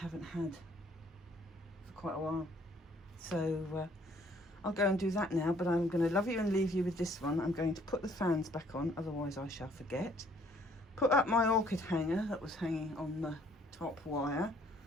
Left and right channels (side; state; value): both; normal; correlation 0.62